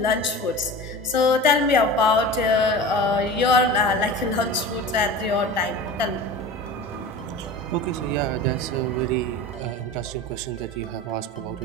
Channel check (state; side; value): normal; both; correlation 0.34